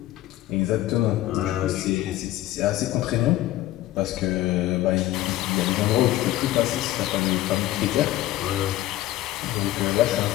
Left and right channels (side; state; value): right; quieter; 15.3 dB